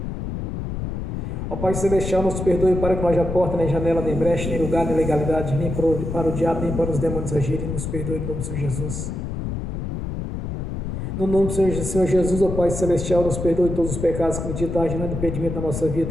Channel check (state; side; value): noise; left; rumble, 4 dB below the sound